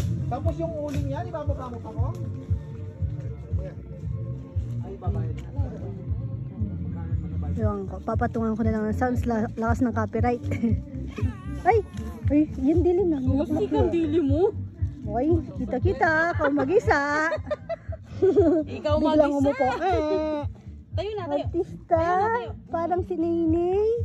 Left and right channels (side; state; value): both; identical; correlation 1.00